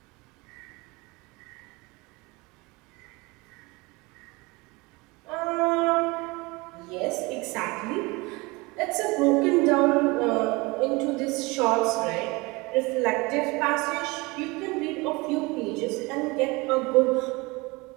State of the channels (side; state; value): left; quieter; 24.8 dB